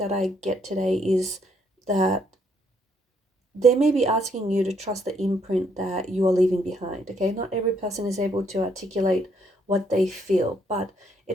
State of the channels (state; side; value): normal; both; correlation 0.70